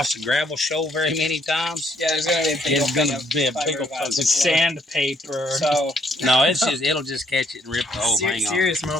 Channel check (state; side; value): normal; both; correlation 0.68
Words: the gravel shoal very many times, Yeah, there's gonna be a big it's going to be a big old Sandpaper. So No, it'll just catch it and rip the whole thing off. serious